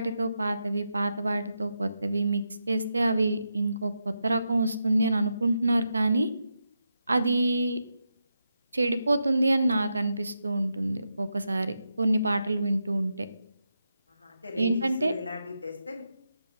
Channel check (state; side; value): inverted; both; correlation -0.85